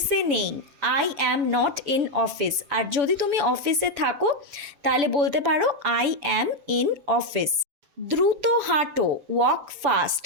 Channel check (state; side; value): late; left; 7.0 ms